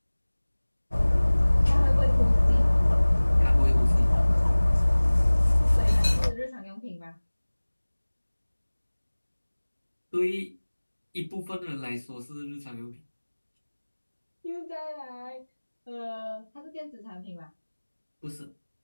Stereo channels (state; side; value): inverted; both; correlation -1.00